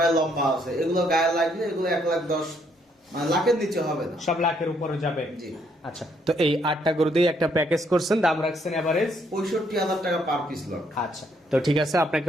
লম্বা আছে, এগুলো গায়ে লাগলে এগুলো 1,10,000 মানে লাখের নিচে হবে না, সব লাখের উপরে যাবে। জি। আচ্ছা, তো এই 8টা গরু দিয়ে একটা প্যাকেজ করছেন, দাম রাখছেন এভারেজ 65,000 টাকা পার পিস লট। আচ্ছা, তো ঠিক আছে, আপনাকে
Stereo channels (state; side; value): normal; both; correlation 0.71